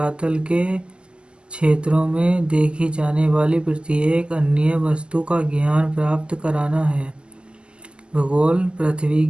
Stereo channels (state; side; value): late; left; 0.050 ms